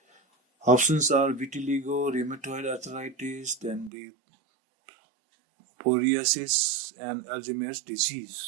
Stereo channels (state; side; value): drops out; left; at 3.9 s